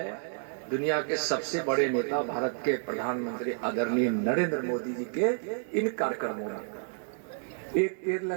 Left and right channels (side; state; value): left; silent; digital silence